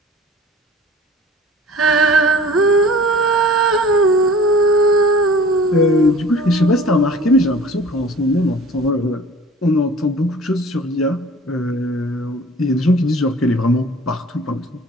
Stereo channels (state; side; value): normal; both; correlation 0.45